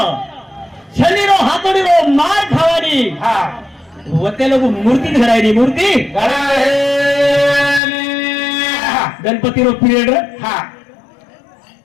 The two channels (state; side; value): drops out; right; at 7.8 s